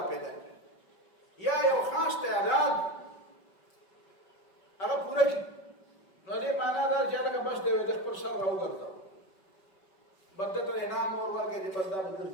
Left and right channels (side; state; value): right; late; 5.3 ms